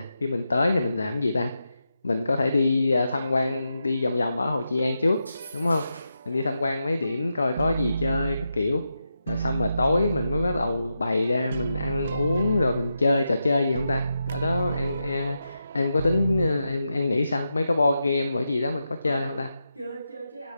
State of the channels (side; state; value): both; inverted; correlation -0.87